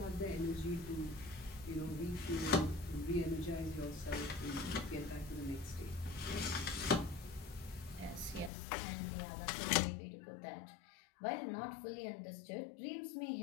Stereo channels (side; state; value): right; drops out; at 8.5 s